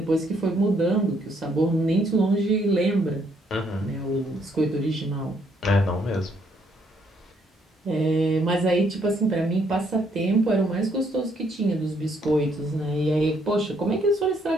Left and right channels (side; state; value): both; normal; correlation 0.70